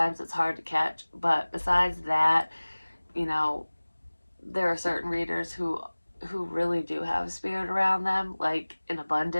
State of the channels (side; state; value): both; inverted; correlation -1.00